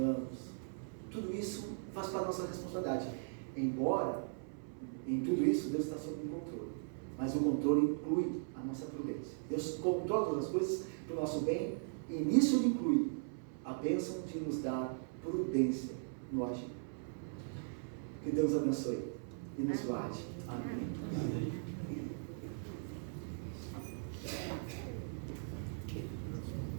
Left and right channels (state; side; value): silent; left; 52 dB below the other